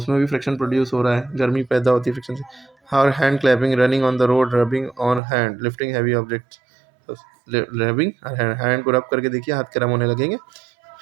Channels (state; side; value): drops out; left; at 5.2 s